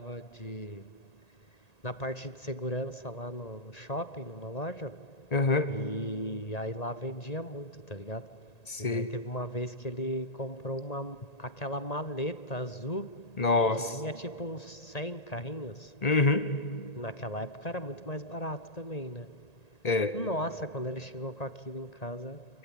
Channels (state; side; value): late; right; 1.8 ms